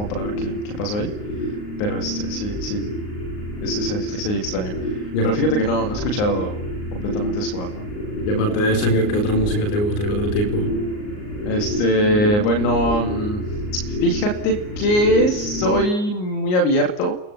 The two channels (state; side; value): late; right; 38 ms